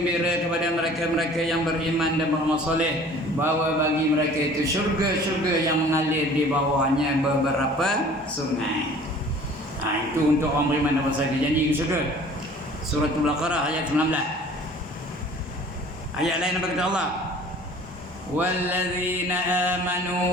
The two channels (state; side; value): normal; both; correlation 0.49